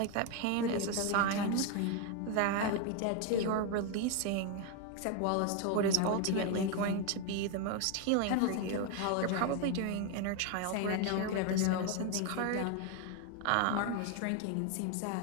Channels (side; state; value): both; different; correlation 0.01